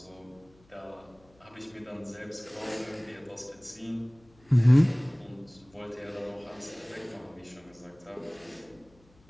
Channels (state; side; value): noise; left; hum, 30 dB below the sound